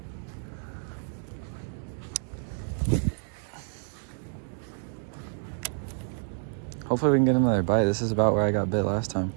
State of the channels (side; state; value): left; silent; 59 dB below the other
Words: Hopefully we can get another bite. This is about where I got bit last time.